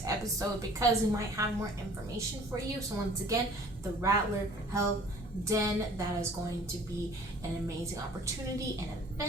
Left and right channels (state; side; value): normal; both; correlation 0.51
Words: episode because we might have more information for you. So once again, the Rattler Health Den, that is going to be an amazing opportunity and